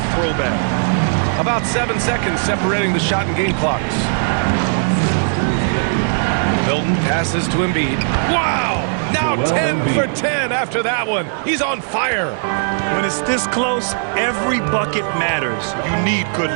throwback. About 7 seconds separating the shot and game clocks. Milton passes to Embiid. Wow! Now 10 for 10 after that one. He's on fire. When it's this close, every bucket matters. You need good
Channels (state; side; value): silent; left; 67 dB below the other